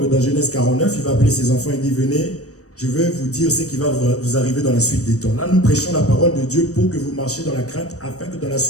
dans Genèse 49, il va appeler ses enfants et dit, venez, je vais vous dire ce qui va vous arriver dans la suite des temps. Là, nous prêchons la parole de Dieu pour que vous marchiez dans la crainte, afin que dans la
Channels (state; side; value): late; right; 0.66 ms